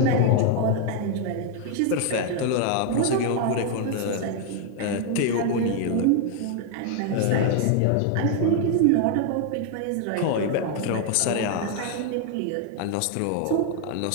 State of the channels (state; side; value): different; both; correlation 0.00